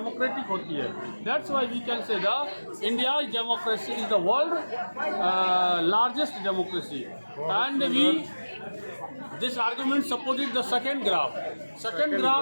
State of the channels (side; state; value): both; inverted; correlation -1.00